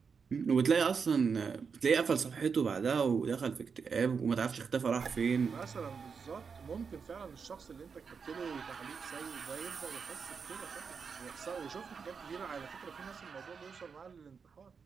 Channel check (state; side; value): quieter; left; 5.8 dB